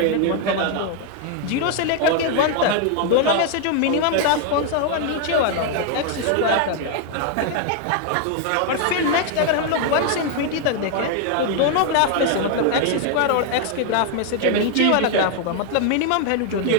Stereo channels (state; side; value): different; both; correlation 0.00